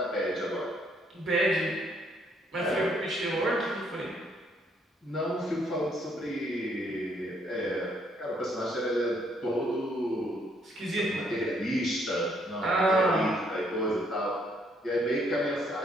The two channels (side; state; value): both; normal; correlation 0.69